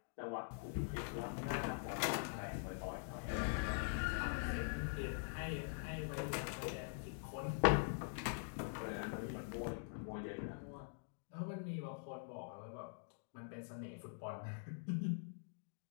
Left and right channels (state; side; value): silent; right; digital silence